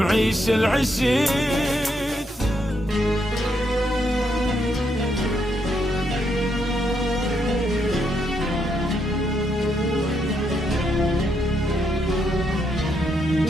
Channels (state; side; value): normal; both; correlation 0.77